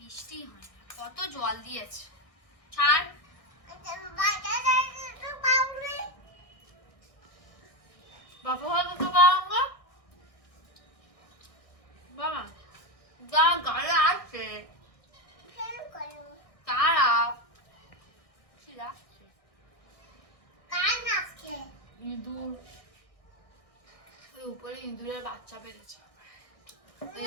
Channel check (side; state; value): right; late; 1.6 ms